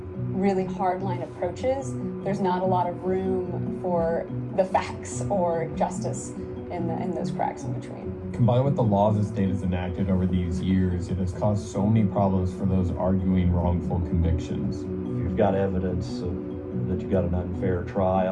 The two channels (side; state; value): both; identical; correlation 1.00